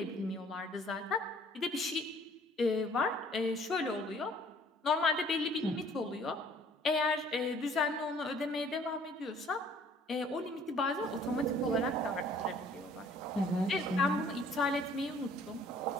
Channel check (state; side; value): normal; both; correlation 0.56